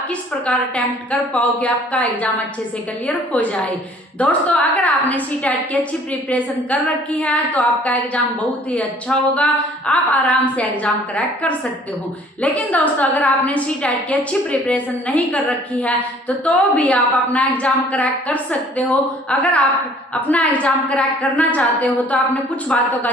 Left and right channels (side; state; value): both; normal; correlation 0.55